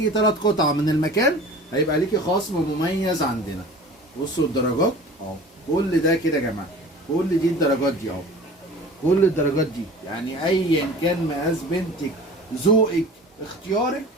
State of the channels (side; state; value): both; normal; correlation 0.41